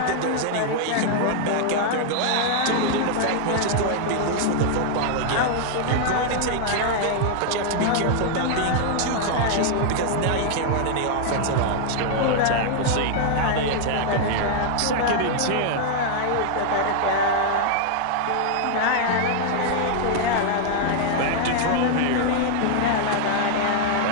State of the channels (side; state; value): both; different; correlation -0.01